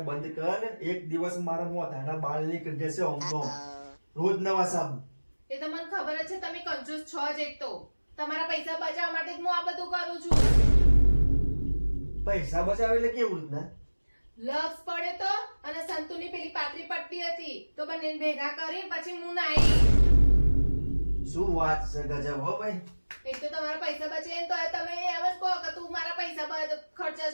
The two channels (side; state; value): both; inverted; correlation -1.00